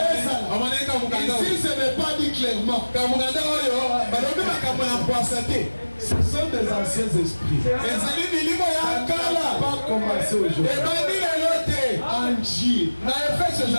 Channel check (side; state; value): both; inverted; correlation -1.00